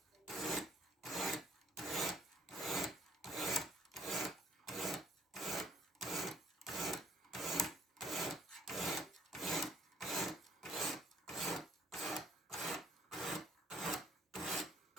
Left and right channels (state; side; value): normal; both; correlation 0.61